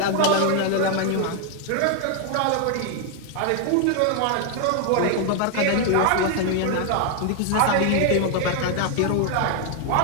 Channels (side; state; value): both; different; correlation 0.00